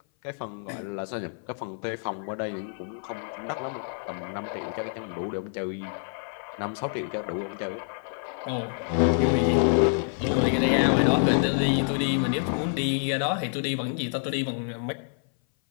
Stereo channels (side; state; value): right; silent; 58 dB below the other